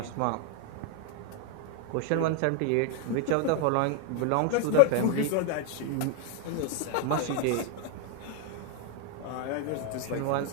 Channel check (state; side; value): different; both; correlation 0.01